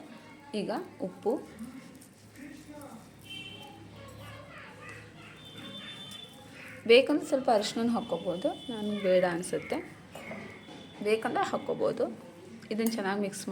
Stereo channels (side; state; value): both; identical; correlation 1.00